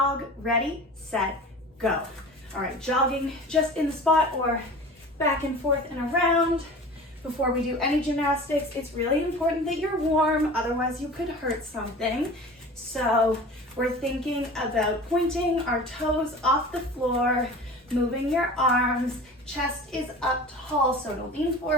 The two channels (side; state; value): both; normal; correlation 0.38